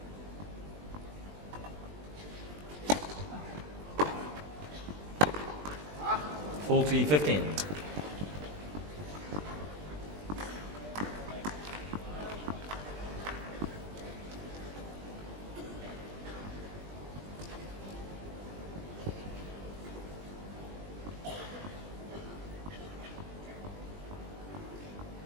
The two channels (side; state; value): left; late; 20 ms